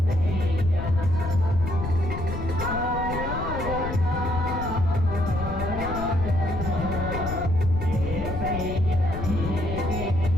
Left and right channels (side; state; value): left; noise; rumble, 5 dB below the sound